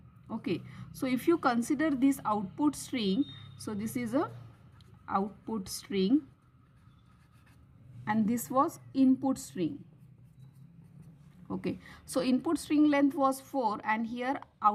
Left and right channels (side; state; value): both; identical; correlation 1.00